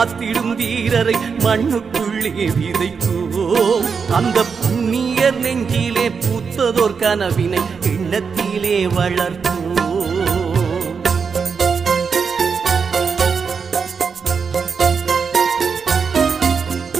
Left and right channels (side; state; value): left; quieter; 5.8 dB